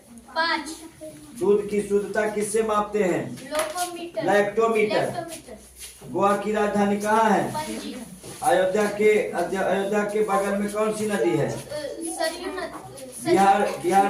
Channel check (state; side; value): identical; both; correlation 1.00